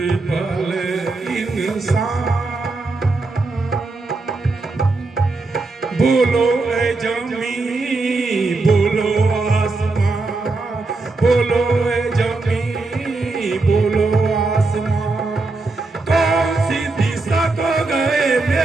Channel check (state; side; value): quieter; left; 3.5 dB